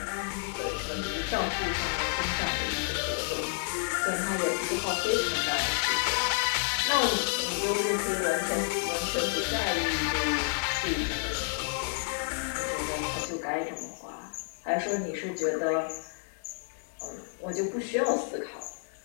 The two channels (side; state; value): right; silent; 58 dB below the other